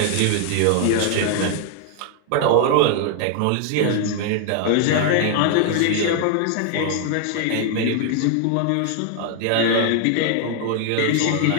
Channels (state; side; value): different; both; correlation 0.00